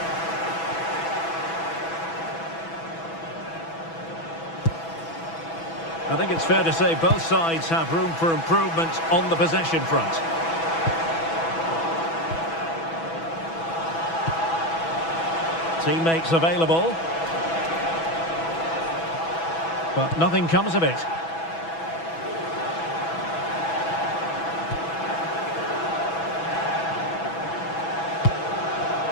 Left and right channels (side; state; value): right; late; 6.1 ms